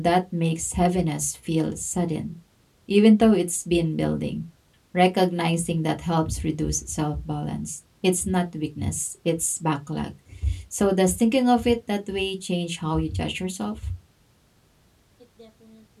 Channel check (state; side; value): identical; both; correlation 1.00